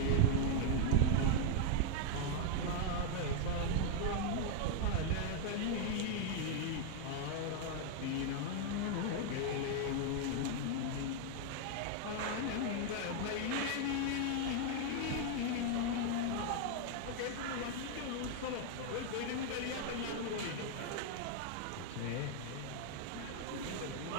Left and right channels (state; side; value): different; both; correlation 0.00